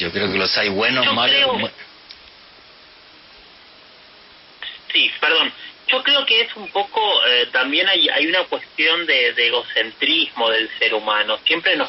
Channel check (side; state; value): both; identical; correlation 1.00